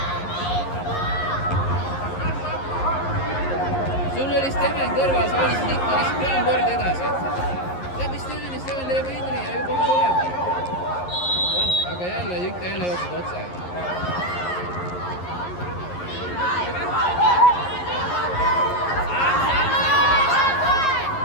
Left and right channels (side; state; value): right; late; 11 ms